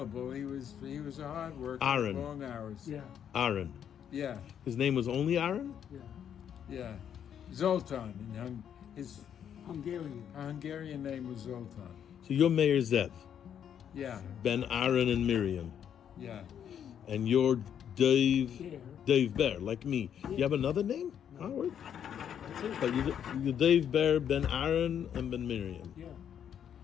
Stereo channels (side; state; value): right; quieter; 8.9 dB